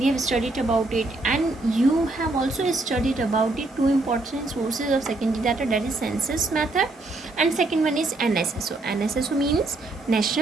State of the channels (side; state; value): left; quieter; 3.0 dB